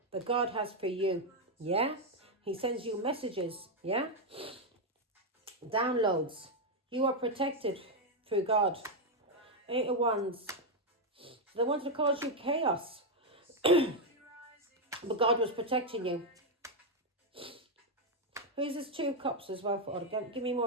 God has for you, yeah? He sends you messages, yeah? Downloads. You are protected through God. 8 of Wands. They wanted to cause you chaos. But God was protecting you. Who's this 2 of Cups as well? For give me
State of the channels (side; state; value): both; normal; correlation 0.02